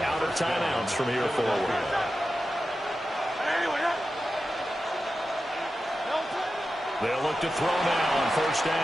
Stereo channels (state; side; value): normal; both; correlation 0.92